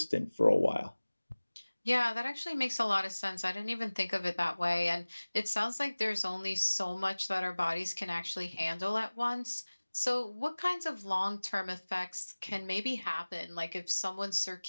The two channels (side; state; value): both; inverted; correlation -1.00